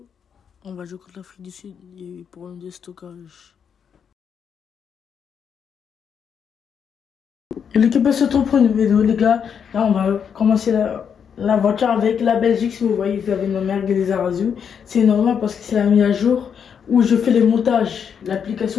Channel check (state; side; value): quieter; right; 7.4 dB